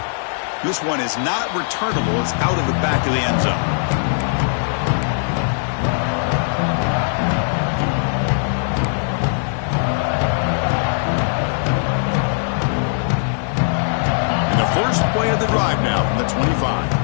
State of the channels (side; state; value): right; silent; digital silence